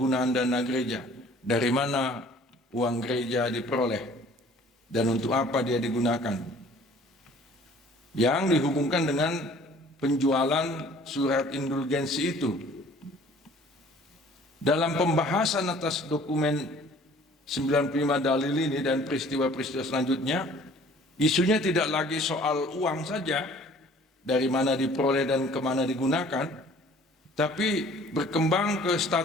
dana gereja. Dari mana uang gereja diperoleh dan untuk apa dia digunakan, yang dihubungkan dengan penjualan surat indulgensi itu. Dalam pembahasan atas dokumen 95 dalil ini dan peristiwa-peristiwa selanjutnya, isunya tidak lagi soal uang saja, dari mana diperoleh dan kemana digunakan, tapi berkembang ke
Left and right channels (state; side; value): normal; both; correlation 0.52